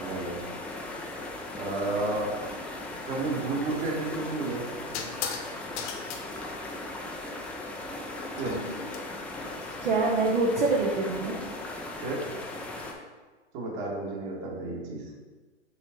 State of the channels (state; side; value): normal; both; correlation 0.26